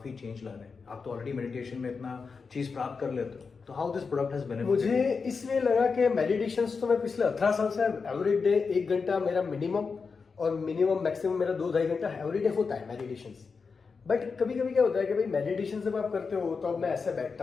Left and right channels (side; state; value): right; quieter; 5.0 dB